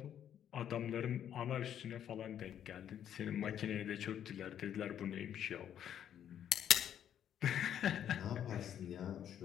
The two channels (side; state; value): right; quieter; 9.9 dB